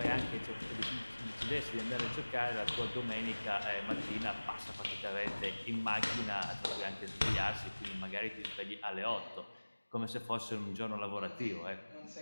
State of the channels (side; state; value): both; inverted; correlation -1.00